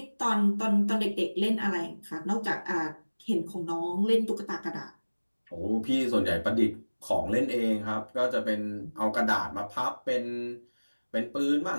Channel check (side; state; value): both; inverted; correlation -1.00